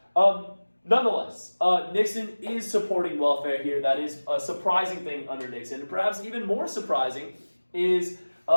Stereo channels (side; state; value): both; inverted; correlation -1.00